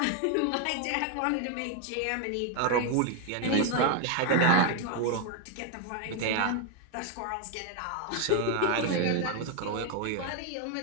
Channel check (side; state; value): both; different; correlation 0.01